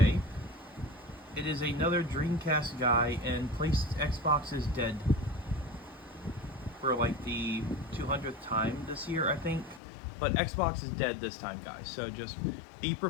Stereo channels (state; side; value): drops out; right; at 9.8 s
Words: it is another Dreamcastguy, and Xbox is dead for like the 200th time this year, I think. But Xbox is dead this time, guys, so just be